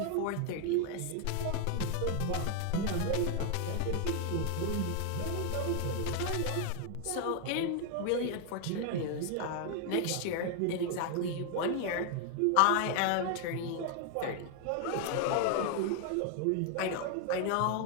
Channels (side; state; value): both; different; correlation 0.00